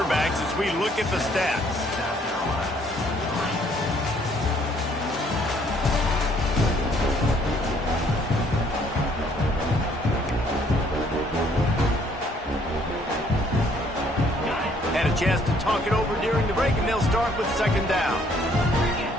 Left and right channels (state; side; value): normal; both; correlation 0.63